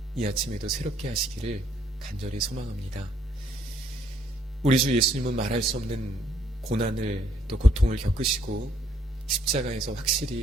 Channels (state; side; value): normal; both; correlation 0.68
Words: 이 아침에도 새롭게 하시기를 간절히 소망합니다. 우리 주 예수님은 말할 수 없는 고난을 또 고통을 겪으시고 십자가에서